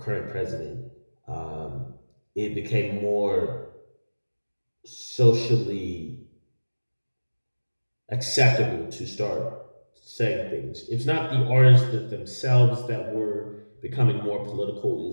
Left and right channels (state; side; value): inverted; both; correlation -1.00